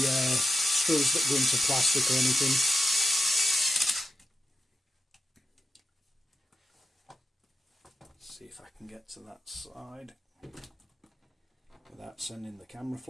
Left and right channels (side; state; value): both; normal; correlation 0.89